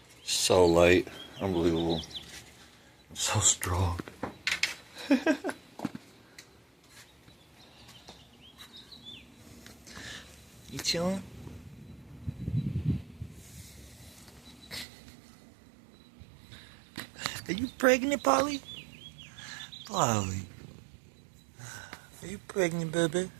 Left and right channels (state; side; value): drops out; left; at 14.9 s